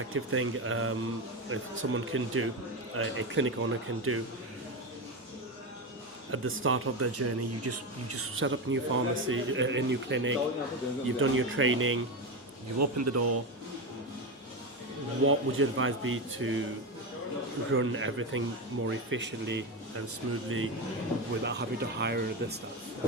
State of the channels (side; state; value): both; normal; correlation 0.15